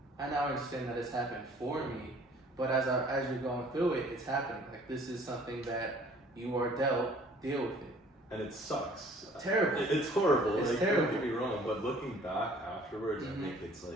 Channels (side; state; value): both; normal; correlation 0.54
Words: I now understand that it's happened for me, but as you're going through it, it's happening. Like, this is something that you are dealt, deal with it. And it sucks. Terrible. It's horrible. It's terrible. Don't get me wrong, but looking back afterwards, I think it's